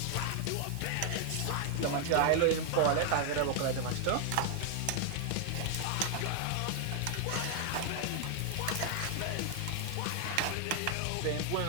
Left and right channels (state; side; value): different; both; correlation 0.00